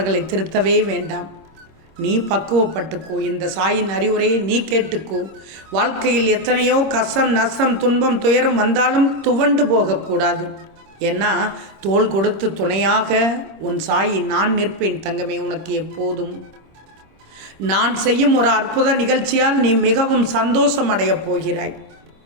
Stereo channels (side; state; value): left; late; 25 ms